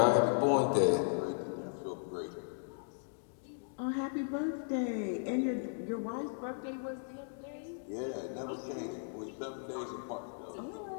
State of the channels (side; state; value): right; silent; digital silence